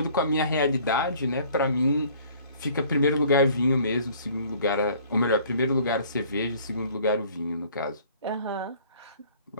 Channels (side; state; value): both; inverted; correlation -0.54